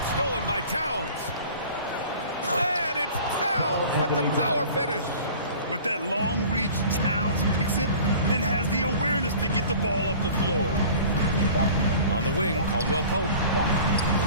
stolen by Towns. And it's Towns with the power finish. With that long reach, Towns picks it, then has the awareness to get the ball up the floor. On the wing, Caldwell Pope.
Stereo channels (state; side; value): inverted; both; correlation -0.44